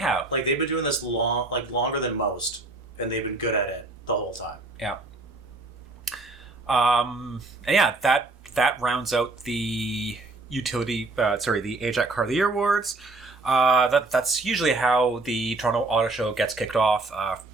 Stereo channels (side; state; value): left; quieter; 3.2 dB